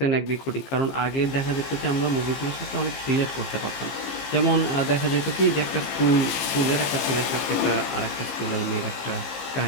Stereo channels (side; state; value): right; late; 15 ms